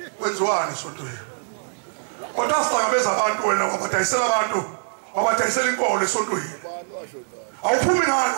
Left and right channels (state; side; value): silent; left; digital silence